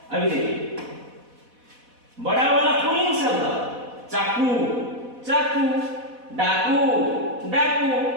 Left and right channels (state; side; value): late; left; 4.1 ms